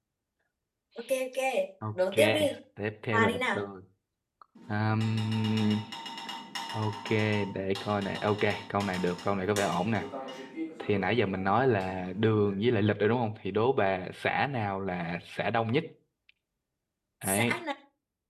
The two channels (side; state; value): both; identical; correlation 1.00